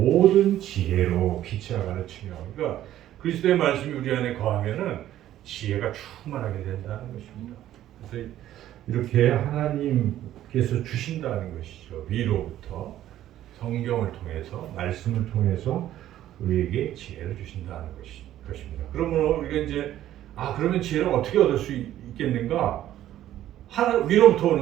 지혜로 피치아 가르치며, 그러니까 그리스도의 말씀이 우리 안에 거하면은 지혜가 충만하게 된다는 것입니다. 그래서 이렇게 하나님께서 주신다는 것이죠. 위로부터 성경을 통해서, 말씀을 통해서 우리에게 지혜를 주신다는 것입니다. 그러면 우리가 이제 그러면 지혜를 어떻게 얻을 수 있겠는가? 위로부터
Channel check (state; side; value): quieter; left; 12.7 dB